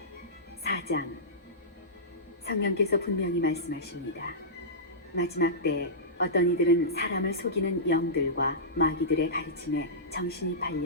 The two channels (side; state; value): both; normal; correlation -0.17